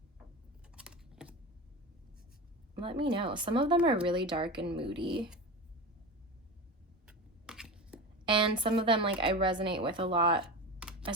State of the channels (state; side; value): normal; both; correlation 0.26